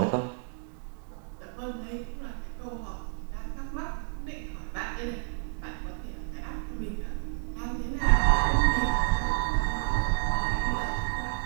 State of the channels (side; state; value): left; silent; digital silence